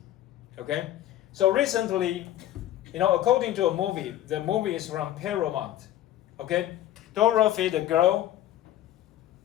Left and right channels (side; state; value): right; quieter; 13.0 dB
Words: Okay, so recently, according to a movie, the movie is from Paramount. Okay, Dorothy the girl,